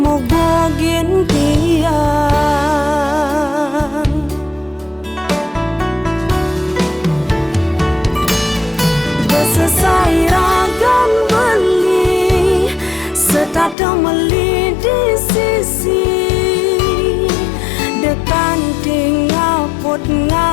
bogin tiang. Besesai ragan beli setata meli di sisi, dekan tinggal put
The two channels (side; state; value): right; drops out; at 13.8 s